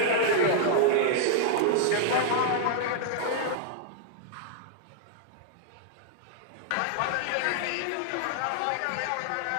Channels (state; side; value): different; both; correlation -0.01